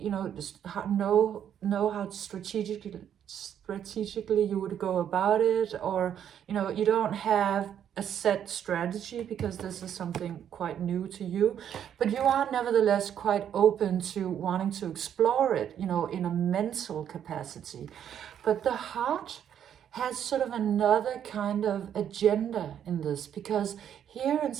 know, just know how strategically you would go about it, or you know, you don't have a set strategy because this is something quite new to you, but you are nevertheless quite open to wanting to explore it, you know, in a mental capacity. But the heart has sort of another kind of agenda in this, because here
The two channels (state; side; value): quieter; left; 9.4 dB